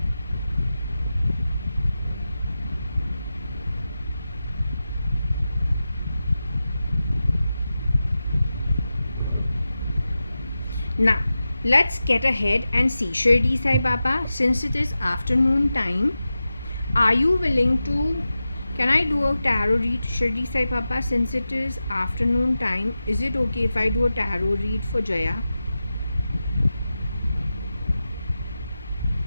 Now, let's get ahead and see. Shirdi Sai Baba, since it is afternoon time, are you willing to, can I do a tarot read? Shirdi Sai Baba, since it is afternoon time, is it okay if I do a tarot read for Jaya?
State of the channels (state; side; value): inverted; both; correlation -0.93